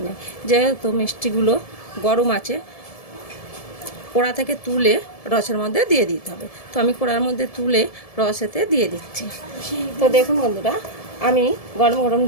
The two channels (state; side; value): late; right; 1.7 ms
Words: নেই। যেহেতু মিষ্টিগুলো গরম আছে, কড়া থেকে তুলে রসের মধ্যে দিয়ে দিতে হবে। তো আমি কড়ার মধ্যে তুলে রসেতে দিয়ে দিচ্ছি। তো দেখুন বন্ধুরা, আমি গরম গরম